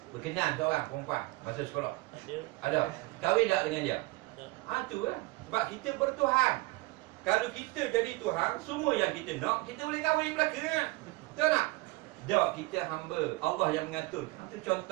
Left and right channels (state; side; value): quieter; left; 22.3 dB